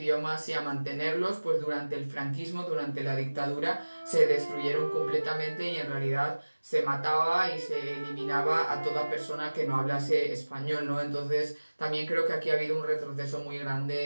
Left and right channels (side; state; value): both; inverted; correlation -1.00